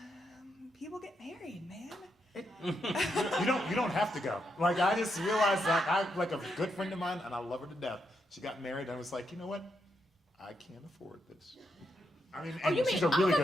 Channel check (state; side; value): normal; both; correlation 0.81